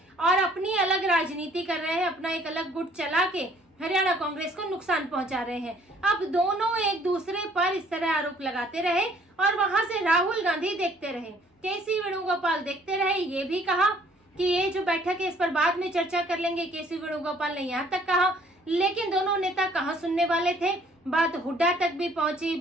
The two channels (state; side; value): normal; both; correlation 0.59